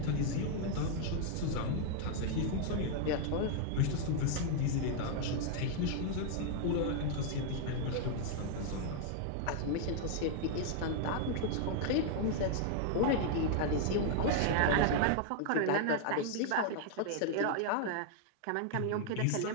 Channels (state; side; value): different; both; correlation -0.01